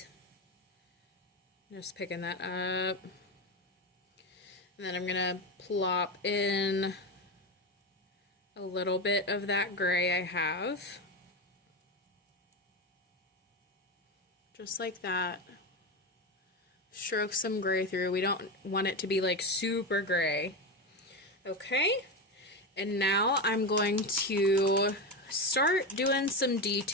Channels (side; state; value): both; normal; correlation 0.16